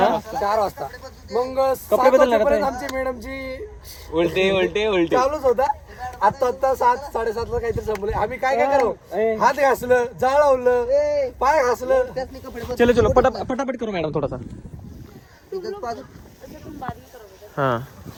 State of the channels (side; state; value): both; identical; correlation 1.00